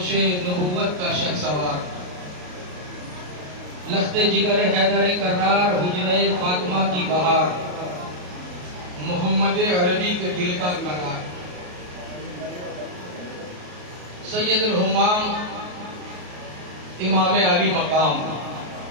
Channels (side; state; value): left; late; 33 ms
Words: نبوت کا شہسوار، لخت جگر حیدر کرار، حجرہ فاطمہ کی بہار، محمد عربی کے دل کا قرار، سید الہمام امام علی مقام،